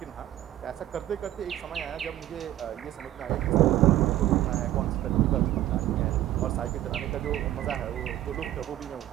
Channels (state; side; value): quieter; left; 13.6 dB